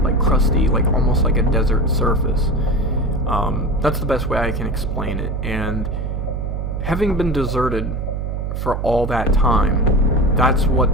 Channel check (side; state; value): right; noise; hum, 3 dB below the sound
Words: crusty, like almost like a desert surface. That's the best way I can explain it. And having been deserted for all that time, that's